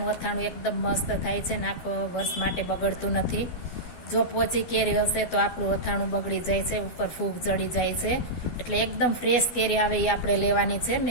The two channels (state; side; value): late; right; 12 ms